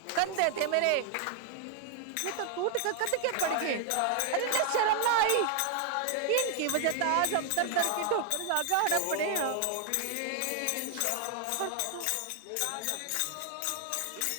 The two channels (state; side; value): different; both; correlation 0.00